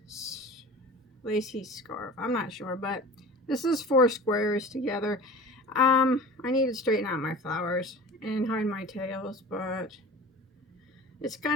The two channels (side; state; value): both; normal; correlation 0.38